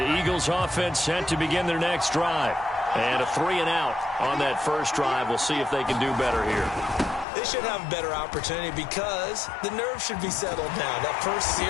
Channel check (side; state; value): right; drops out; at 7.2 s